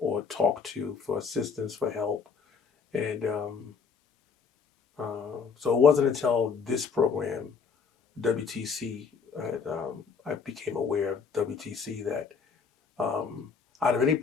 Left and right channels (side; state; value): right; quieter; 5.7 dB